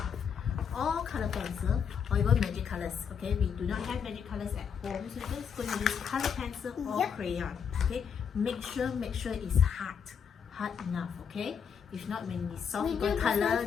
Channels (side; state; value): right; quieter; 7.1 dB